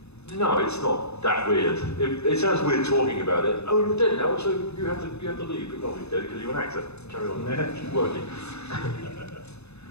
No, it's not that weird. It sounds weird talking about it. Oh, you're dead now, so you have to leave. But not be dead because you're an actor. Carry on working.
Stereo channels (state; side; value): late; right; 0.80 ms